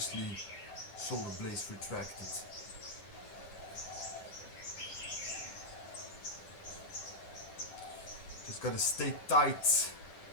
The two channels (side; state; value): right; late; 11 ms